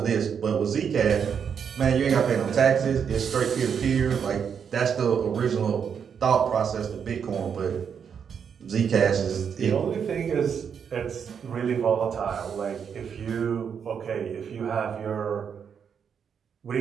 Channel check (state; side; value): quieter; left; 7.2 dB